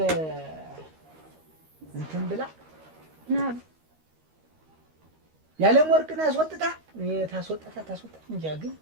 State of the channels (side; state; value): left; late; 13 ms